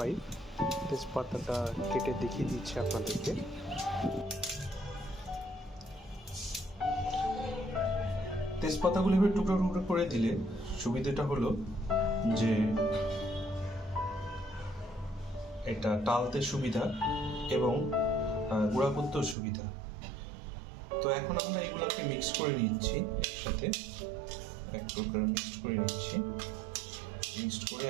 তেজপাতাটা কেটে দেখিয়ে দিচ্ছে আপনাদেরকে। তেজপাতাগুলো এবার টুকরো টুকরো করে দিলে সুবিধাটা হলো যে এটা টালতে সুবিধা এবং গুঁড়া করতেও সুবিধা। তো এখন আমরা এগুলাকে মিক্স করে নিচ্ছি, একসাথে এক প্রকার মিক্স করে নিচ্ছি। মিক্সড করে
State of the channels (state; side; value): drops out; left; at 19.4 s